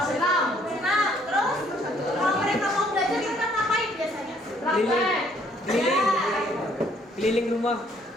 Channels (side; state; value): both; normal; correlation 0.64